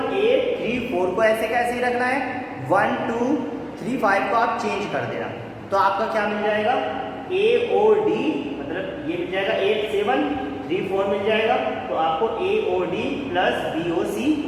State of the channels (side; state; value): both; identical; correlation 1.00